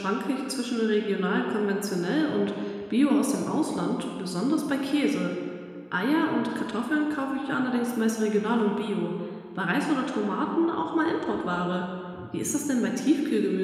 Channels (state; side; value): identical; both; correlation 1.00